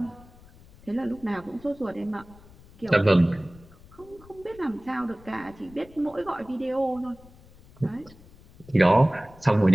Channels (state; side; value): noise; left; rumble, 23 dB below the sound